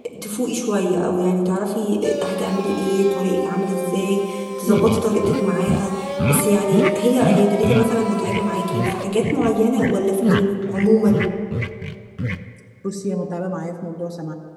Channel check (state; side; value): identical; both; correlation 1.00